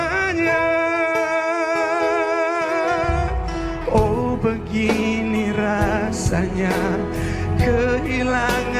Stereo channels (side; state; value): both; identical; correlation 1.00